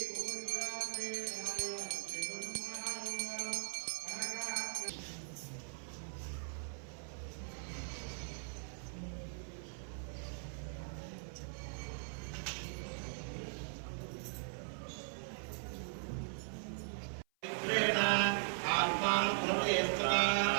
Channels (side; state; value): left; silent; 51 dB below the other